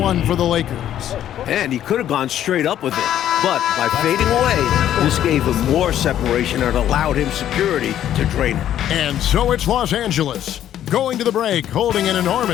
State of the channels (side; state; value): right; quieter; 11.2 dB